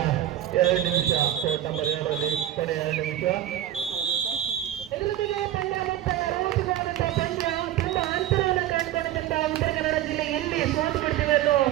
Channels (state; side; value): quieter; left; 12.4 dB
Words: 2 ನಿಮಿಷ ಕೋರ್ಟ್ ನಂಬರ್ 2ರಲ್ಲಿ ಕೊನೆಯ 2 ನಿಮಿಷ. ಎದುರುಗಡೆ ಪಂದ್ಯ ಮತ್ತೆ ರೋಚಕವಾದಂತಹ ಪಂದ್ಯ. ತುಂಬಾ ಅಂತರವನ್ನು ಕಂಡುಕೊಂಡಂತಹ ಉತ್ತರ ಕನ್ನಡ ಜಿಲ್ಲೆ ಎಲ್ಲಿ ಸೋತು ಬಿಡ್ತೀವಿ ಅನ್ನೋ